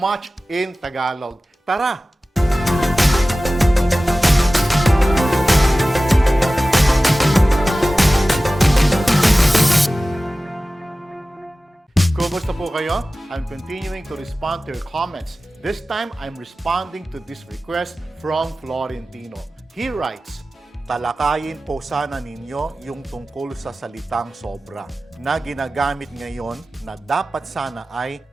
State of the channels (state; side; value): normal; both; correlation 0.96